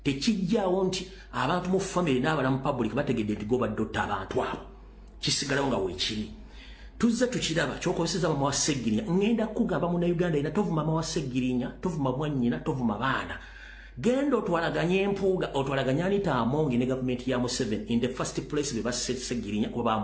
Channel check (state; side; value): identical; both; correlation 1.00